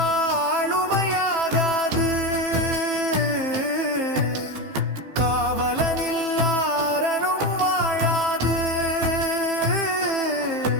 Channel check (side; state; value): left; late; 15 ms